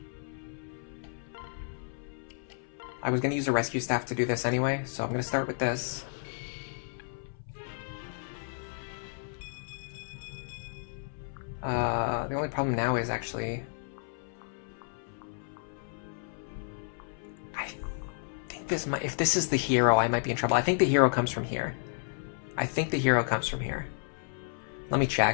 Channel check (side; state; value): right; silent; 56 dB below the other